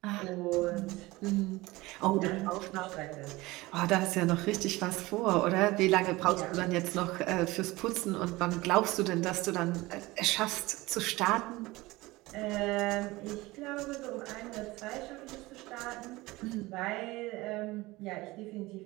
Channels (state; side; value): quieter; left; 20.4 dB